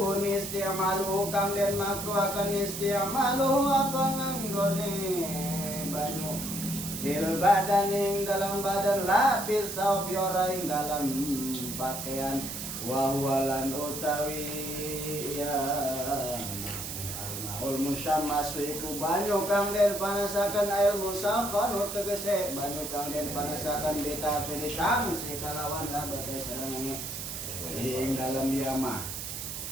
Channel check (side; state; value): right; noise; hiss, 6 dB below the sound